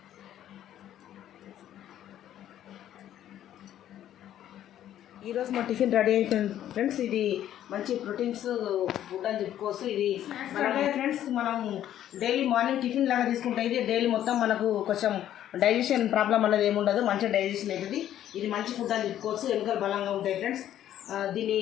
ఈరోజు మా టిఫిన్ రెడీ అయిపోయింది ఫ్రెండ్స్. ఇది మంచి ప్రోటీన్స్ ఫుడ్ అని చెప్పుకోవచ్చు. ఇది ఫ్రెండ్స్ మనం డైలీ మార్నింగ్ టిఫిన్ లాగా తీసుకుంటే ఇది డైలీ మొత్తం మనకు కొంచెం డైజెషన్ ప్రాబ్లం అనేది ఏముండదు, మంచిగా డైజెషన్ అవుతుంది. ఇది మంచి ఫుడ్ అని చెప్పుకోవచ్చు. ఎముకలు బలంగా ఉంటాయి ఫ్రెండ్స్. దీన్ని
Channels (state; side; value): quieter; right; 11.5 dB